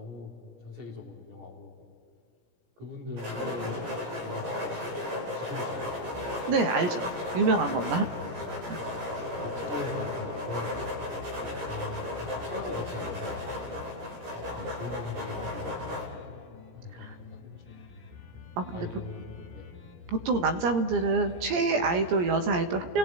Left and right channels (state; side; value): late; left; 17 ms